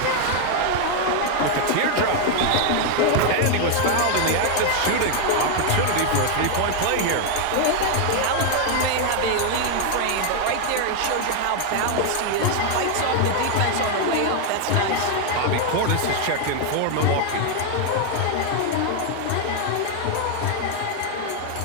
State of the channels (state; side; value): different; both; correlation 0.00